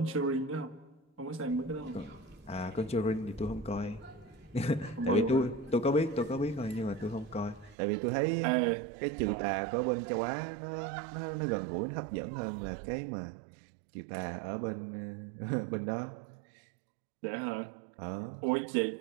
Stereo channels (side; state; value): left; drops out; at 7.8 s